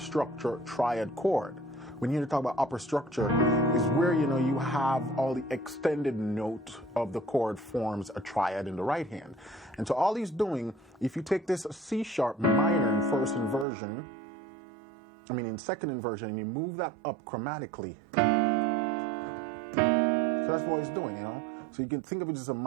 triad chord. When you talk about upper structure, is where, you know, you have all the extended note of the chord forms a triad in the right hand. And so all he's doing, if you take this C sharp minor in first inversion, in second inversion, and you move that up chromatically. So that's what he's doing, you know. So you can think of it as a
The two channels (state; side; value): drops out; left; at 13.7 s